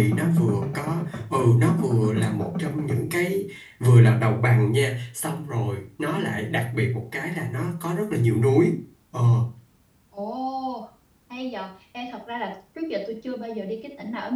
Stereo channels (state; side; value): identical; both; correlation 1.00